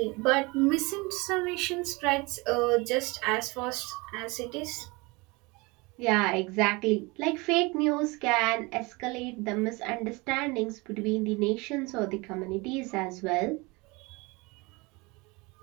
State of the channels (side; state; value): left; quieter; 25.5 dB